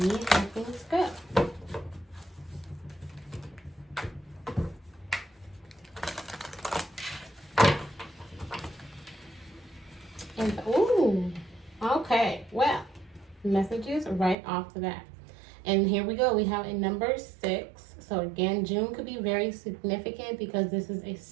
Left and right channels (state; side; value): drops out; left; at 14.4 s